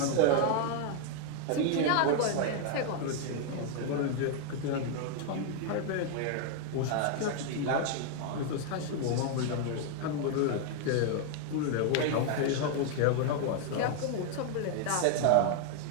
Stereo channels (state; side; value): different; both; correlation 0.00